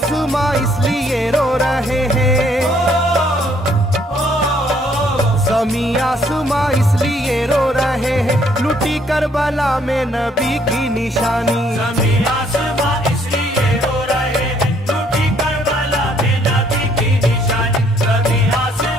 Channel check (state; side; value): normal; both; correlation 0.66